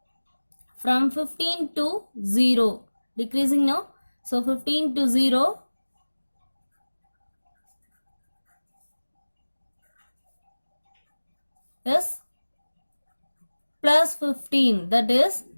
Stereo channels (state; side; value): inverted; both; correlation -1.00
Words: from 15 to 0. Decreasing now. So 15 to 0. is plus 15, that is